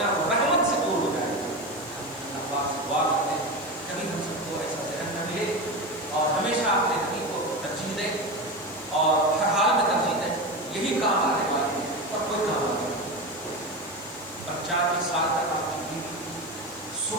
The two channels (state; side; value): noise; left; hiss, 19 dB below the sound